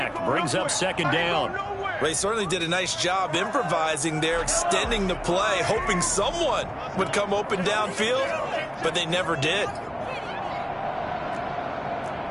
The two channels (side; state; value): both; identical; correlation 1.00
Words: Brings up 2nd down. They certainly did a nice job improvising there, extending the play, hoping someone would come open downfield, but they never did.